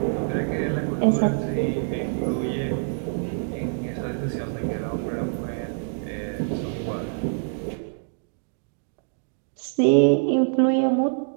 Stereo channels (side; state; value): left; silent; digital silence